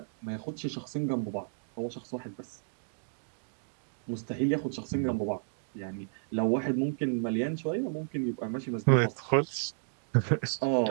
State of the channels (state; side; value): silent; left; digital silence